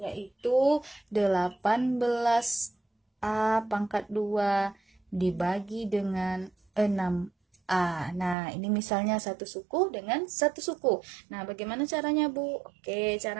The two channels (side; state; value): left; drops out; at 8.3 s